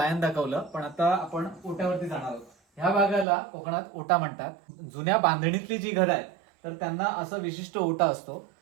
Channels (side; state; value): left; drops out; at 3.2 s